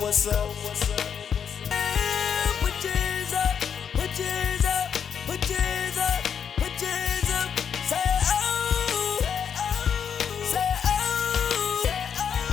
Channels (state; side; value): quieter; right; 7.6 dB